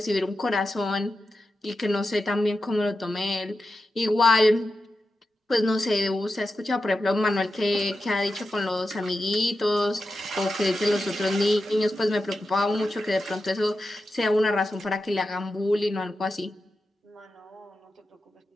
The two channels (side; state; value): both; normal; correlation 0.90